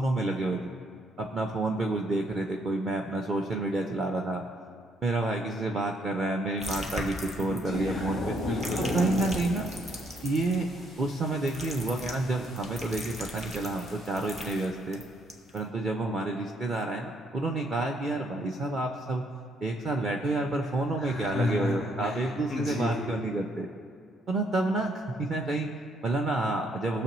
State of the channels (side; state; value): both; normal; correlation 0.70